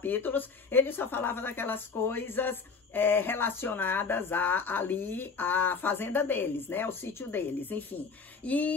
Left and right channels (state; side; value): quieter; right; 5.0 dB